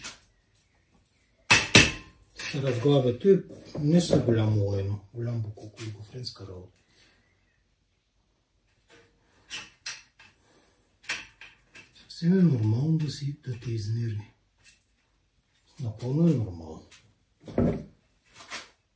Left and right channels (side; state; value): both; identical; correlation 1.00